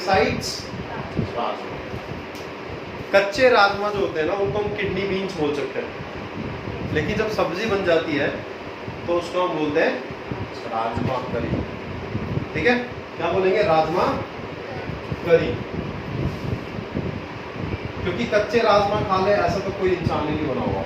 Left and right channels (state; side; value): identical; both; correlation 1.00